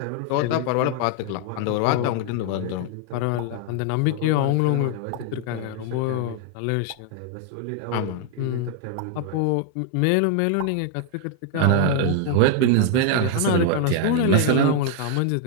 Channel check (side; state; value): both; different; correlation 0.00